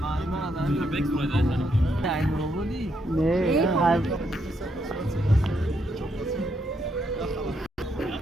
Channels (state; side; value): normal; both; correlation 0.77